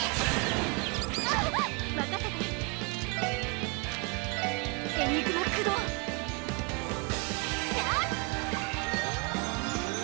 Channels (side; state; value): left; quieter; 29.8 dB